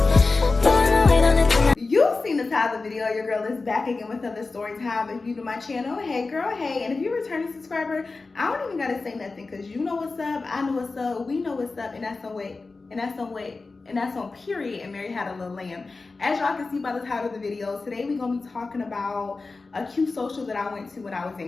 You've seen the title of the video. Your girl is back again with another story time. If you to my channel, hey girl, hey. And if you're a returning subscriber, I don't even gotta say nothing because you know what's up, I know what's up, we know what's up, and that's on weight, and that's on weight, and that's on period. And Mary had a little lamb. As y'all can see by the title of the video, today we're gonna be talking about a cute social that I went to when I was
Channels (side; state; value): right; quieter; 3.8 dB